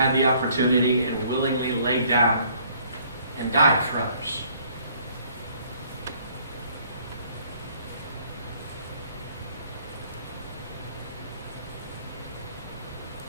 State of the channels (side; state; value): both; inverted; correlation -0.61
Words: the opportunity and willingly laid down and died for others.